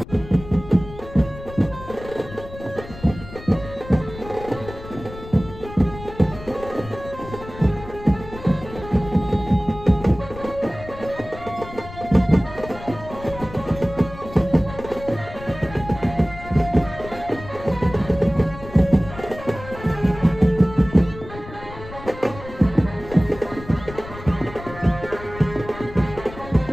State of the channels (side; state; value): left; noise; rumble, 14 dB below the sound